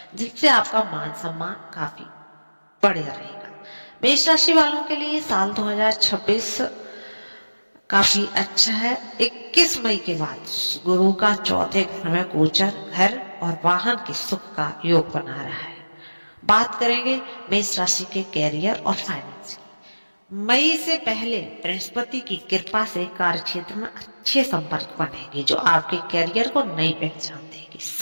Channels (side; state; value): both; inverted; correlation -1.00